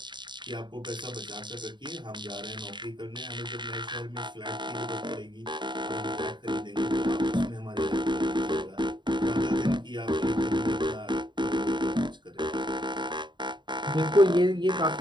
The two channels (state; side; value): late; left; 0.22 ms